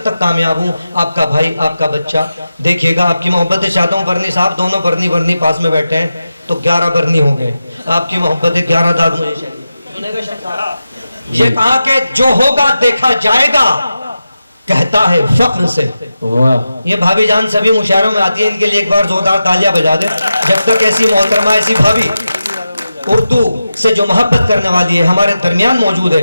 तक कामयाब हूँ, आपका भाई आपका बच्चा। देखिएगा, आपकी मोहब्बत चाहता हूँ। बरनी साहब दोनों बरनी पास में बैठे हैं तो 11 बरनी हो गए। आपकी मोहब्बत 11 दाद मुझे चाहिए। ये कहा कि जो होगा देखा जाएगा, कहता है फख्र से। वाह, ये भाभी जान सभी मुशायरों में आती है, इनके लिए एक बार जोरदार तालियां बजा दे। जब तक ऐसी मोहतरमा, ऐसी भाभी उर्दू से जो मोहब्बत करने वाली है हमारे दरमियान मौजूद है,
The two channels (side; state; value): both; inverted; correlation -0.92